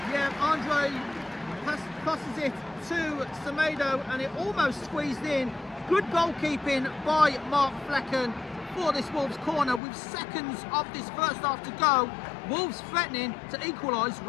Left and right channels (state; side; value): drops out; right; at 9.8 s